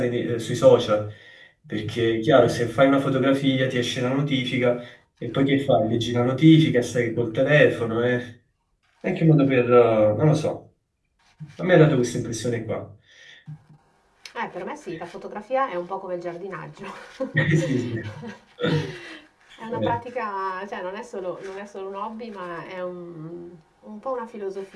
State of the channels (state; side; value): identical; both; correlation 1.00